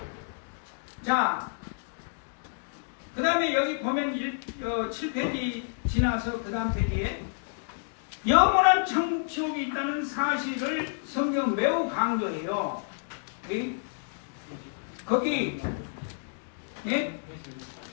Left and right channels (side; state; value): right; silent; digital silence